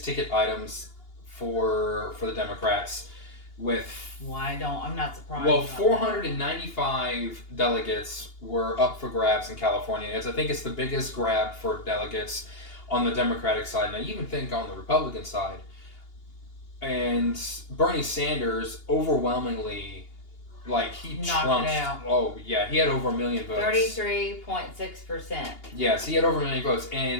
ticket items for the Democrats, with I'm not surprised. well, 495 delegates were up for grabs in California. I think it's the biggest grab for delegates on the Democratic side, and I even think on the Republican side. And Bernie Sanders overwhelmingly, he trumped. Oh yeah, he had over 1 million votes. 33.6%. Yes, he had over 1 million votes,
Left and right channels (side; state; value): right; late; 2.8 ms